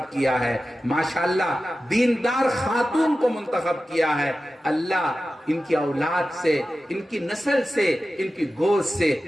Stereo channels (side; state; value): both; normal; correlation 0.94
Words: کیا ہے، ماشاءاللہ دیندار خاتون کو منتخب کیا ہے. اللہ ان کی اولاد سے، ان کی نسل سے، ان کی گوشت